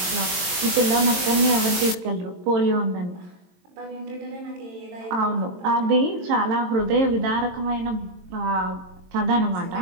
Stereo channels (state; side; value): late; left; 22 ms